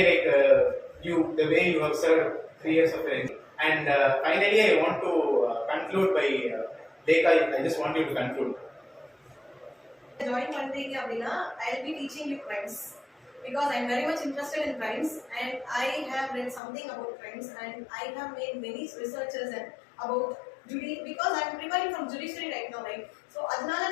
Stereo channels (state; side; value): drops out; right; at 16.6 s